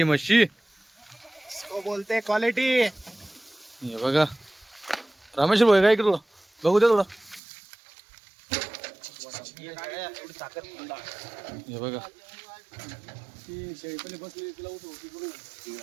म्हशी बोलते क्वालिटी. हे बघा रामेश्वर भाई काय इकडं बघू द्या थोडं. हे बघा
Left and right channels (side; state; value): left; drops out; at 7.4 s